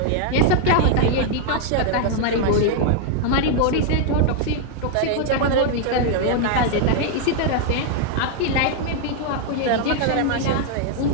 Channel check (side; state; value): both; different; correlation 0.00